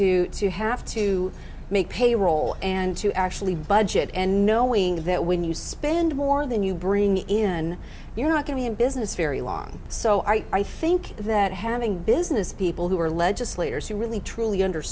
have to make payroll and to actually budget, and knowing that when you spend more than you bring in, you're not going to be in business very long. So I think that having business people who are legislators who really truly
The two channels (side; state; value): both; identical; correlation 1.00